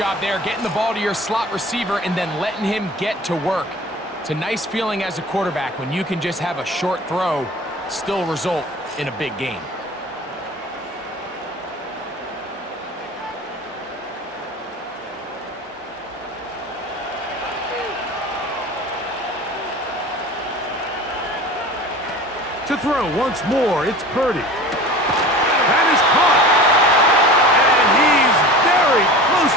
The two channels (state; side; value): normal; both; correlation 0.38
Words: there, getting the ball to your slot receiver and then letting him get to work. It's a nice feeling as a quarterback when you can just have a short throw, still result in a big game. To throw once more, it's Purdy. That is caught. And he's very close